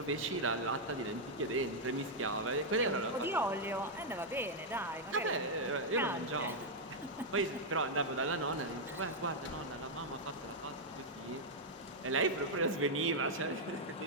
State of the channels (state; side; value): normal; both; correlation -0.03